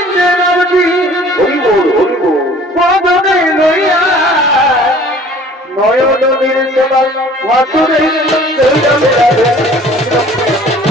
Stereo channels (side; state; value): both; normal; correlation 0.51